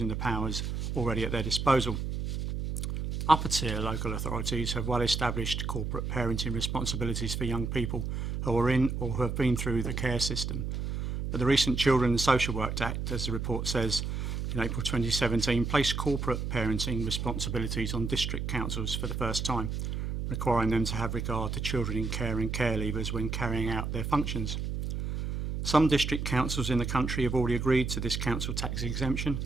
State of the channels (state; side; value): noise; right; hum, 3 dB below the sound